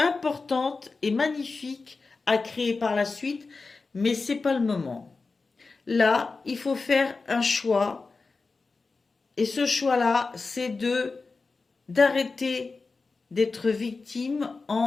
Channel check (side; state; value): right; quieter; 4.1 dB